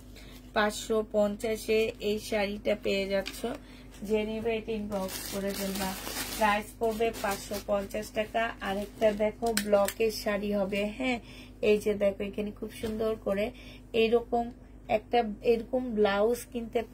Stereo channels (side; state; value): both; identical; correlation 1.00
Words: 550-এ এই শাড়িটা পেয়ে যাচ্ছ। যে নিবে এটা ইনবক্স করে ফেলবা। প্রাইস পড়বে 550 টাকা। আরেকটা দেখো, ব্লকের শাড়ি হবে, হ্যাঁ, এই যে দেখো, এখানে খুব সুন্দর করে এরকম একটা এরকম ব্লাউজ কিনতে